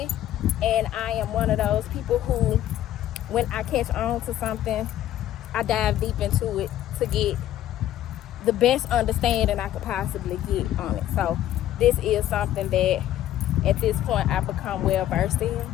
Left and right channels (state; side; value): quieter; right; 12.5 dB